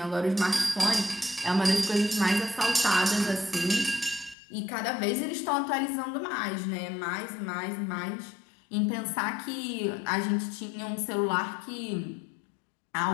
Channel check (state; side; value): drops out; right; at 4.4 s